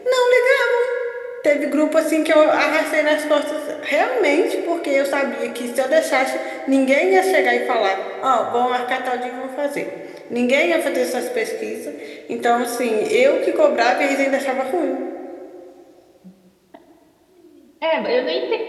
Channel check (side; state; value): both; identical; correlation 1.00